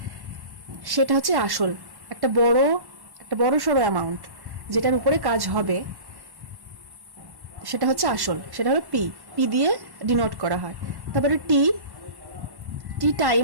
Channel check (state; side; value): late; left; 1.1 ms